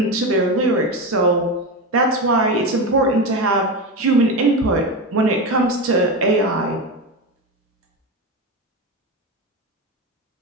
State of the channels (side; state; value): both; normal; correlation 0.18